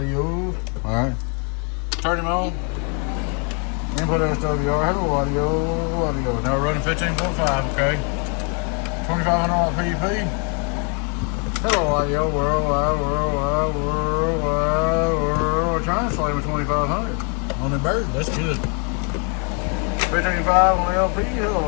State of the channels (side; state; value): right; quieter; 38.1 dB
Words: Alright. Turn him on. Input SWR. Hello, audio. Now we're running 15.5, okay? 2500 PDP. Hello, audio. Worldwide. Translate with 2500 on the bird. That's good. 15.5 on the LP. Hello,